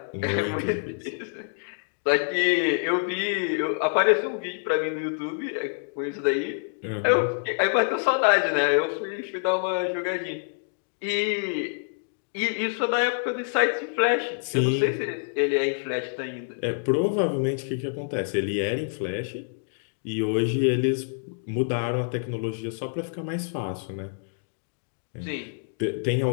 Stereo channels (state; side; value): silent; right; digital silence